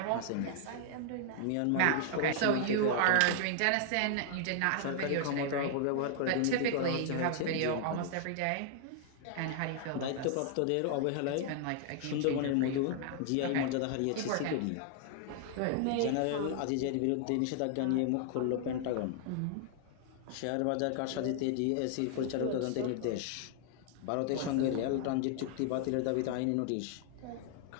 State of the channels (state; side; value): different; both; correlation -0.01